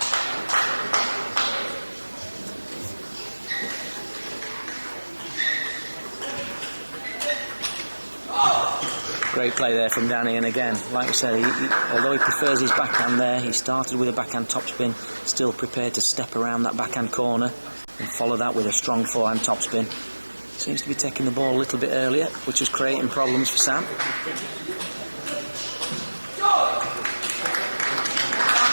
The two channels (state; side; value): inverted; both; correlation -1.00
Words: Great play there from Danny, and again, like we said, although he prefers his backhand there, he started with a backhand topspin, still prepared to step around that backhand corner and follow that with a strong forehand topspin. Seems to be taking the ball a little bit earlier, which is creating problems for Sam.